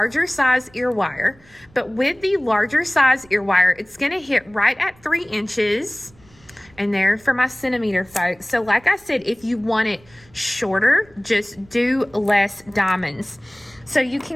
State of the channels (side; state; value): right; noise; rumble, 28 dB below the sound